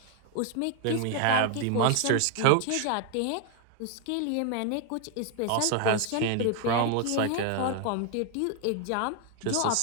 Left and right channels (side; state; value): both; different; correlation 0.00